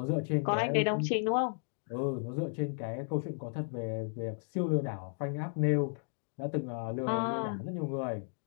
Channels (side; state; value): right; silent; digital silence